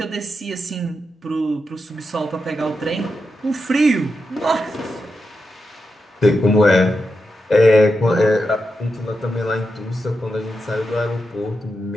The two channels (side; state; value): both; normal; correlation 0.87